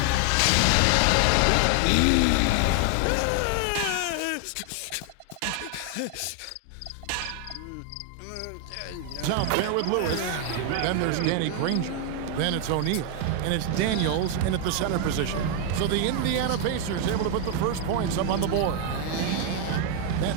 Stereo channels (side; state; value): both; different; correlation 0.01